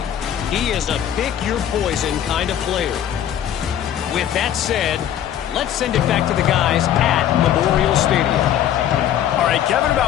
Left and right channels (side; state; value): right; quieter; 10.6 dB